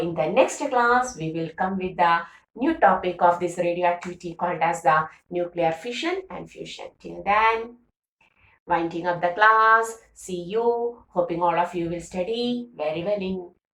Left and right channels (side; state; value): both; identical; correlation 1.00